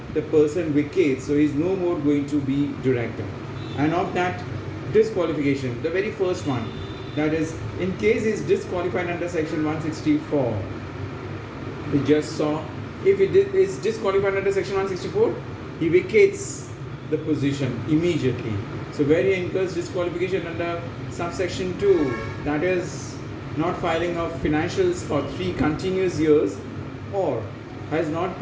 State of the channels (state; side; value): identical; both; correlation 1.00